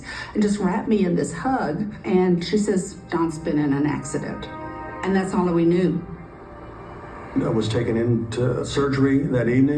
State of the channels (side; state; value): both; identical; correlation 1.00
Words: and just wrapped me in this hug. And she says, Don's been in an accident. And that's all that we knew. I was taken into surgery that